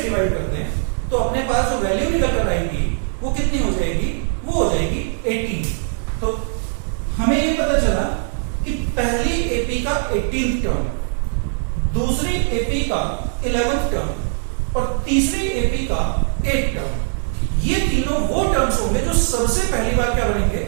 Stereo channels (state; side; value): silent; left; digital silence